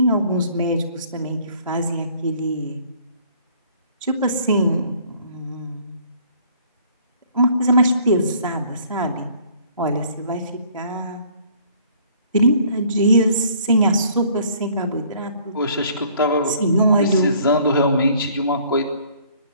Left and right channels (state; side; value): inverted; both; correlation -0.58